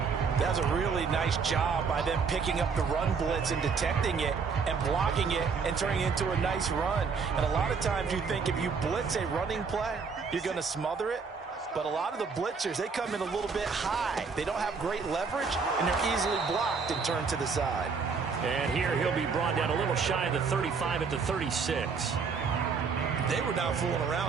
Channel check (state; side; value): quieter; left; 5.3 dB